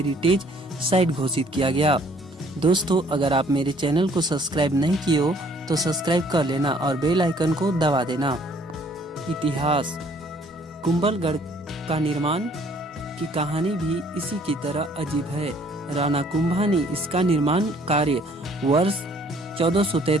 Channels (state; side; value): normal; both; correlation 0.60